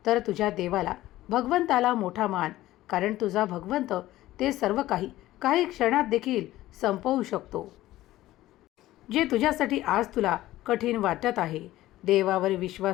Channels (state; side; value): quieter; right; 15.7 dB